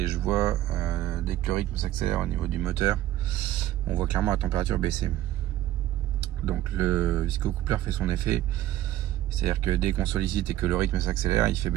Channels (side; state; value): left; quieter; 13.8 dB